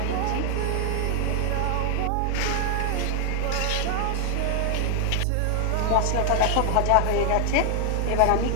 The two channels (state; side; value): different; both; correlation 0.00